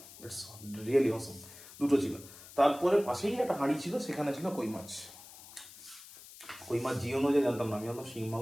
ইটস রিয়েলি অসম। দুটো ছিল। তারপরে পাশেই একটা হাঁড়ি ছিল, সেখানে ছিল কই মাছ। কই মাছ জিওনো যায় জানতাম না, আমি জানতাম শিং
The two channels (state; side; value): noise; left; hiss, 18 dB below the sound